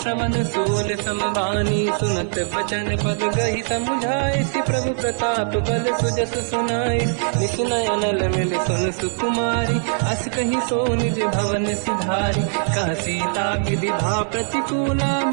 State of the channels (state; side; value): silent; left; digital silence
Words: सूल समबानी सुनत बचन पद गही समुझाए सि प्रभु प्रताप बल सुजस सुनाई निसुनय अनल मिल सुन सुकुमारी अस कही सो निज भवन सिधारी कह सीता की विधा प्रतिकूला